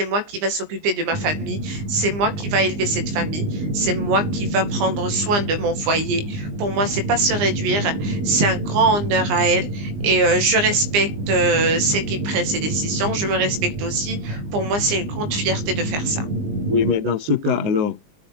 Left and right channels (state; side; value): late; left; 20 ms